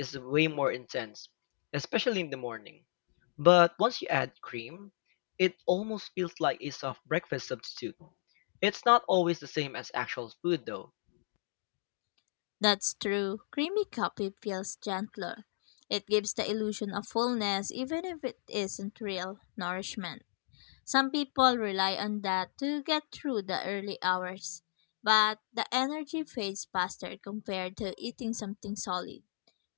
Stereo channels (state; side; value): silent; right; digital silence